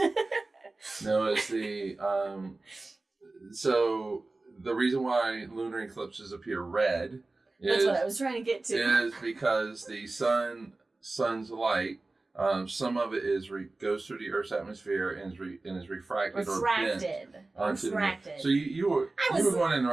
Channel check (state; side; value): quieter; left; 3.2 dB